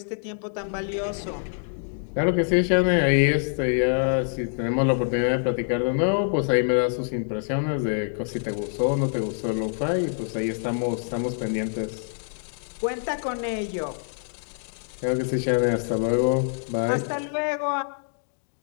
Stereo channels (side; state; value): right; silent; digital silence